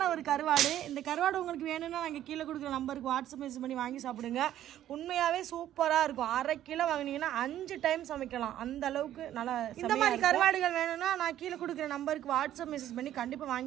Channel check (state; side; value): quieter; left; 12.1 dB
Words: ஒரு கருவாடு. இந்த கருவாடு உங்களுக்கு வேணும்னா நாங்கள் கீழே கொடுக்குற நம்பருக்கு வாட்ஸ்அப் மெசேஜ் பண்ணி வாங்கி சாப்பிடுங்க. உண்மையாகவே சூப்பராக இருக்கும். 1/2 கிலோ வாங்கினீங்கன்னா 5 டைம் சமைக்கலாம். அந்த அளவுக்கு நல்லா. இந்த மாதிரி கருவாடுகள் வேணும்னா நான் கீழே கொடுக்குற நம்பருக்கு வாட்ஸ்அப் மெசேஜ் பண்ணி கண்டிப்பாக